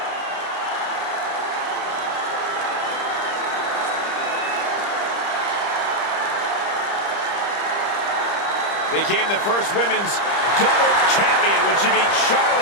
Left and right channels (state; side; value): late; right; 30 ms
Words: Became the first women's double champion when she beat